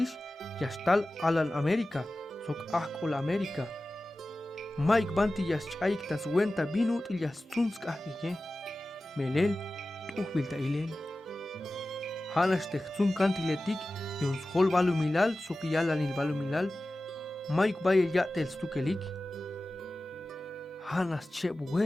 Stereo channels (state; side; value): normal; both; correlation 0.95